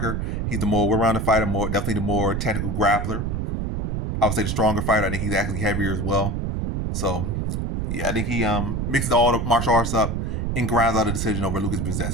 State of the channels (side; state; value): right; noise; rumble, 1 dB below the sound